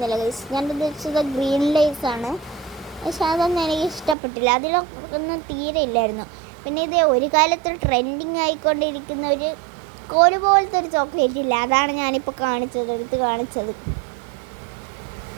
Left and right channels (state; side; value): drops out; left; at 4.2 s